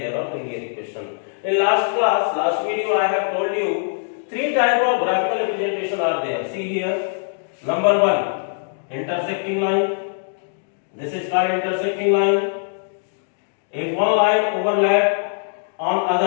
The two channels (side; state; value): right; silent; digital silence